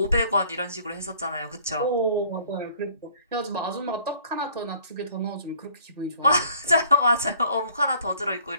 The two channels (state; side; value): inverted; both; correlation -0.57